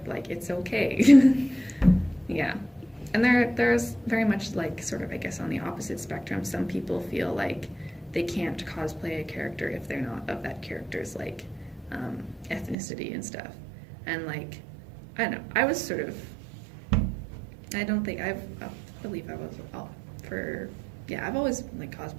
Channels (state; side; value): drops out; left; at 12.8 s